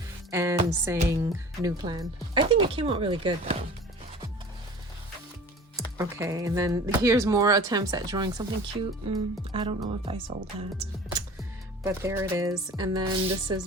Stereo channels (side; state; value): both; normal; correlation 0.42